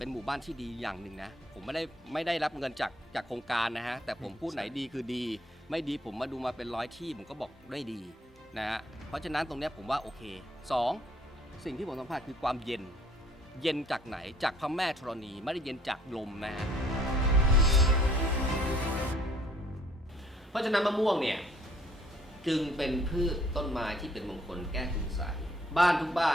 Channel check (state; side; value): normal; both; correlation 0.61